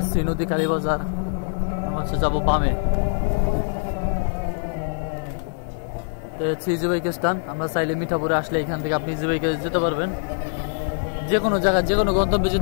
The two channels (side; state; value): right; silent; 61 dB below the other